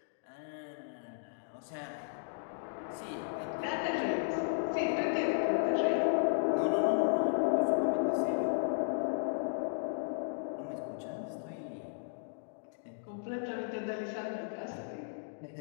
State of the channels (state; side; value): silent; right; digital silence